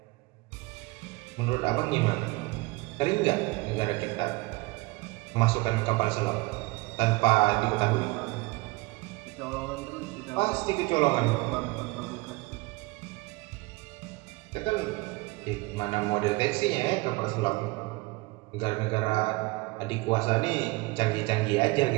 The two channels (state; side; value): quieter; left; 23.1 dB